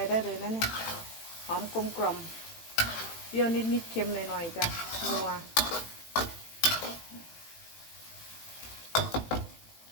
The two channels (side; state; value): right; late; 18 ms